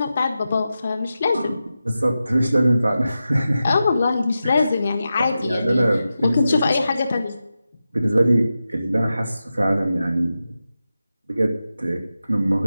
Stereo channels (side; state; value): both; inverted; correlation -0.91